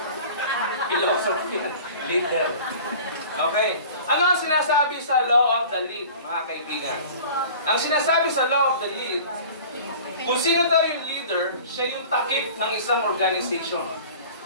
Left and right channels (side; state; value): both; inverted; correlation -0.43